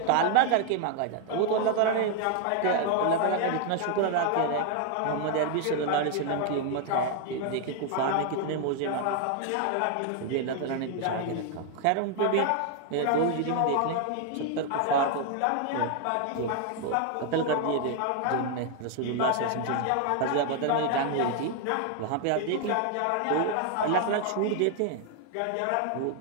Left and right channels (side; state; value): both; different; correlation 0.00